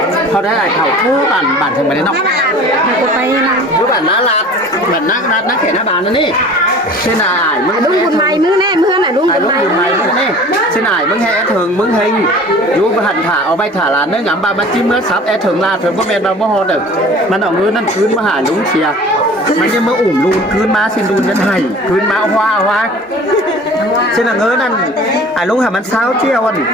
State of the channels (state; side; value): normal; both; correlation 0.43